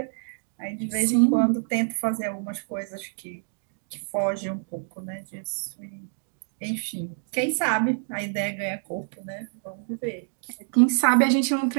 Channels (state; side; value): silent; left; digital silence